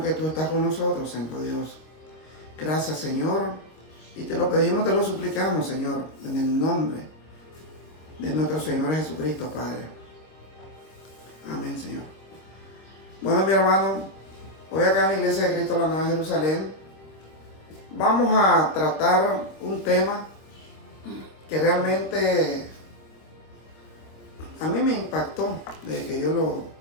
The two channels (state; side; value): late; right; 25 ms